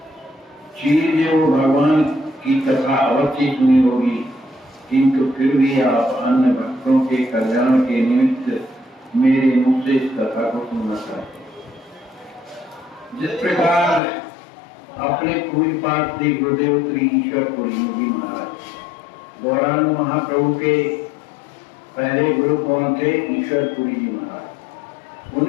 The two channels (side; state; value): right; drops out; at 14.0 s